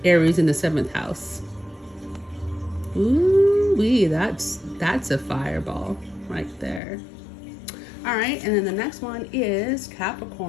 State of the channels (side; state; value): right; drops out; at 6.8 s